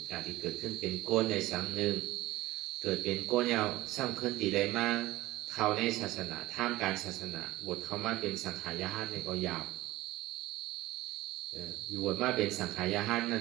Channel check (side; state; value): left; quieter; 17.7 dB